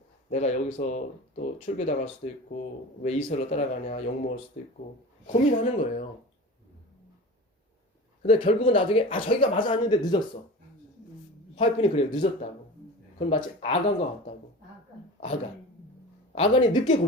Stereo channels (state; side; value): normal; both; correlation 0.34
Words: 내가 여기서 또 출교당할 수도 있고 왜 이설로 따라가냐 욕먹을 수도 있고 고민하는 거예요. 근데 결국은 나중에 저기가 맞아 왔는데 늦었어. 화이픈이 그래요. 늦었다고. 그건 마치 아간과 같다고. 아간이 늦게